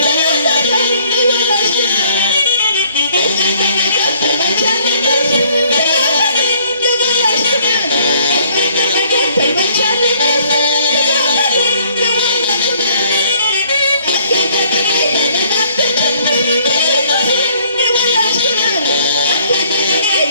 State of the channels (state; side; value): inverted; both; correlation -0.61